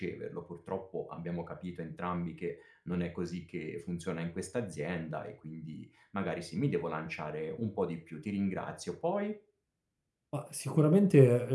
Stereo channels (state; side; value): identical; both; correlation 1.00